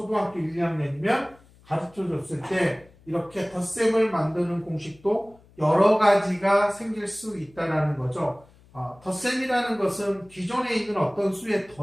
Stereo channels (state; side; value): noise; left; hum, 28 dB below the sound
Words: 1, 2학년이면 가르쳐 줬을 때 이렇게 덧셈을 만드는 공식도 여러 가지가 생길 수 있다라는 거죠. 덧셈이라는 것은 기존에 있는 어떤 수에